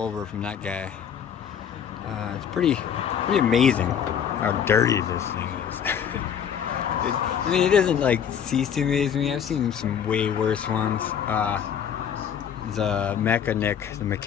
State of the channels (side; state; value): right; quieter; 8.3 dB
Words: from that guy. It's pretty amazing how dirty this thing is. I mean, it doesn't like cease to amaze me. I've seen some way worse ones. The mechanic,